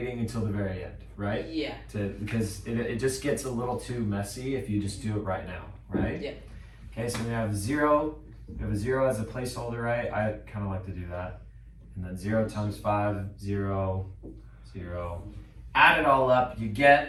until the very end, right? Yeah. Because it just gets a little too messy if you just do it right now, right? Yeah. Okay, so we have 0. We have a 0 as a placeholder, right? I kind of like to do that. And then 0 times 5, 0, 0. Add it all up, you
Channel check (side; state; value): both; identical; correlation 1.00